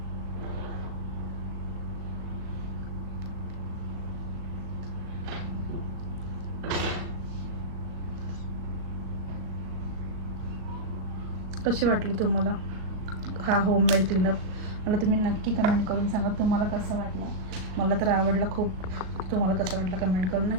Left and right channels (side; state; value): left; late; 38 ms